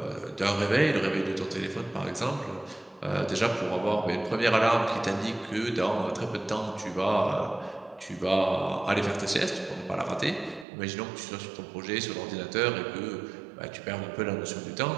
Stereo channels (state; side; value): drops out; left; at 10.7 s